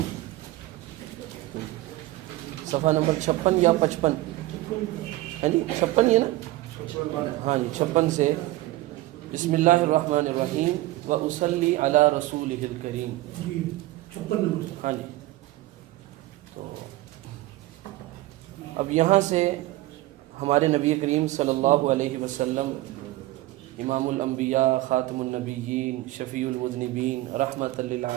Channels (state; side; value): quieter; left; 17.6 dB